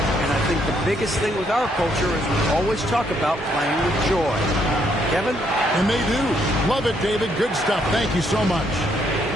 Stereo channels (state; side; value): normal; both; correlation 0.72